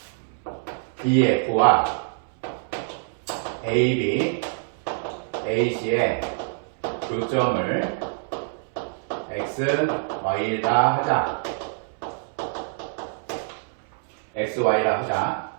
DF와 AB, AC의 교점을 X, Y다 하자. X, Y라 하자.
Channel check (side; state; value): left; silent; 62 dB below the other